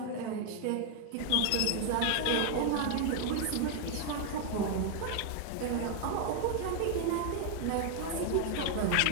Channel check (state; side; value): different; both; correlation 0.00